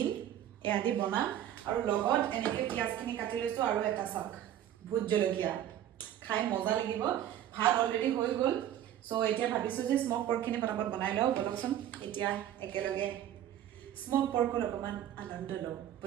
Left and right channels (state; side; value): quieter; left; 11.3 dB